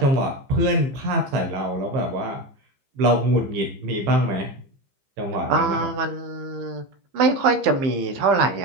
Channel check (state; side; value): late; left; 15 ms